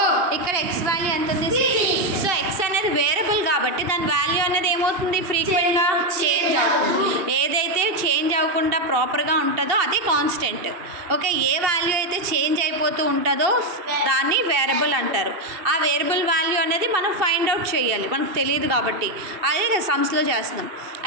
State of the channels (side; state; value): left; late; 2.7 ms